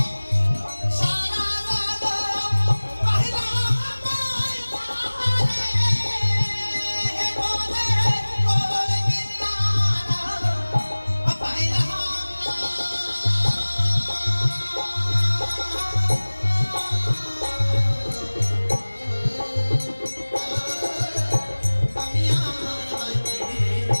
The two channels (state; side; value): inverted; both; correlation -1.00